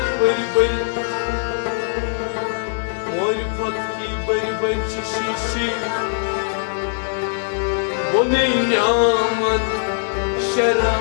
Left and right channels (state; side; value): silent; right; digital silence